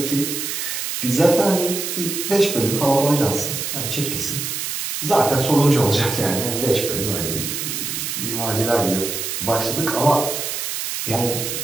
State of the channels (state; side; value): noise; right; hiss, 3 dB below the sound